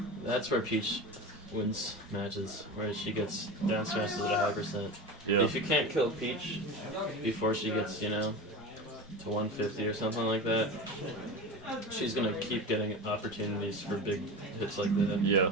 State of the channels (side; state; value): both; normal; correlation 0.28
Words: that's where Peach wins matches, where she gets down smashes at a high percent. Yeah. If you can't kill Peach before she gets, to 150 or something like that, she's gonna keep getting opportunities for big hits like that. Yeah.